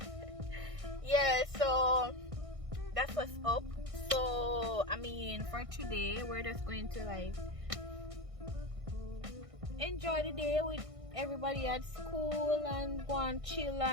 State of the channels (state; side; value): late; left; 1.6 ms